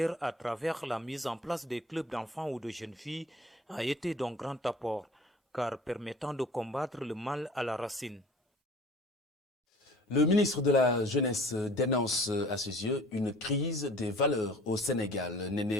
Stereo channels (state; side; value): normal; both; correlation 0.47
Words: à travers la mise en place des clubs d'enfants ou de jeunes filles a été d'un grand apport, car permettant de combattre le mal à la racine. Le ministre de la Jeunesse dénonce à ses yeux une crise des valeurs au Sénégal.